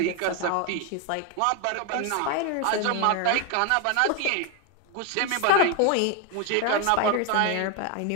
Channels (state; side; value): different; both; correlation 0.01